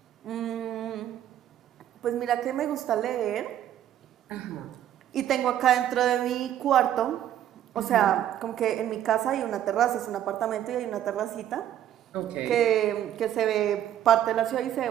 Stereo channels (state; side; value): quieter; left; 11.2 dB